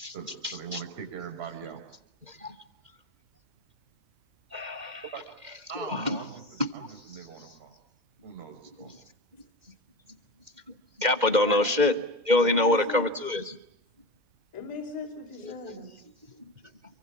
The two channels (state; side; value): late; left; 2.1 ms